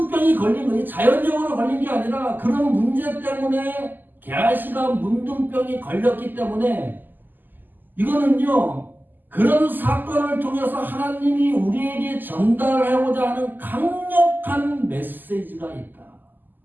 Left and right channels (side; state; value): left; late; 0.089 ms